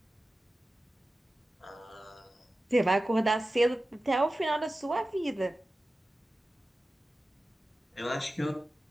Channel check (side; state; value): both; normal; correlation 0.94